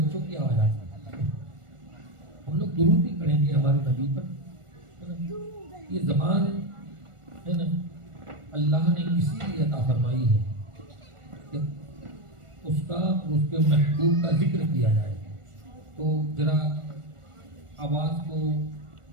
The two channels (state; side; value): late; left; 1.4 ms